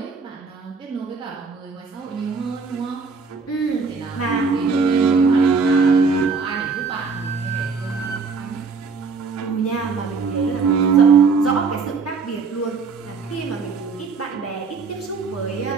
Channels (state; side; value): quieter; left; 4.9 dB